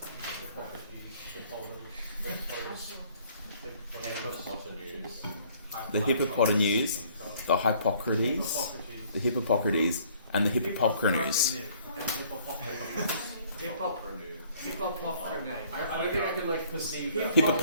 The Hippopotamus, the Hippocrates, the Hippocrates, and the Hippocrates. I don't think I can perceive that.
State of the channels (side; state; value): both; inverted; correlation -0.59